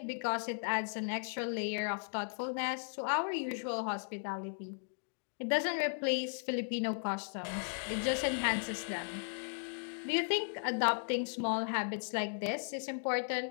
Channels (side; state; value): right; silent; digital silence